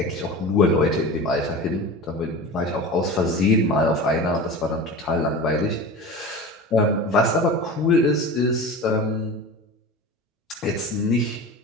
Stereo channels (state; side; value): normal; both; correlation 0.32